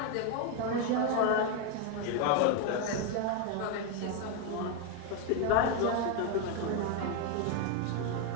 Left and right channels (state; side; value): different; both; correlation 0.02